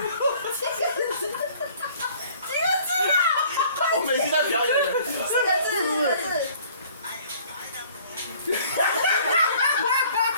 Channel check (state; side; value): inverted; both; correlation -0.54